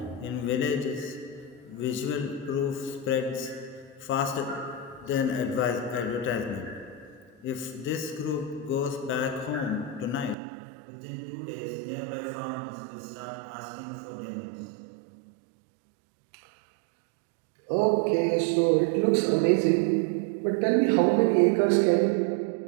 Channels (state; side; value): drops out; left; at 10.4 s